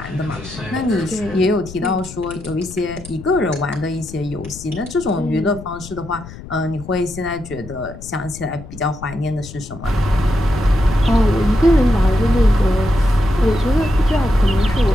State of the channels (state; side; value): noise; left; rumble, 15 dB below the sound